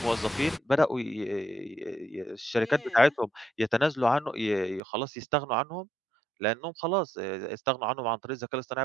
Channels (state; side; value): drops out; left; at 4.8 s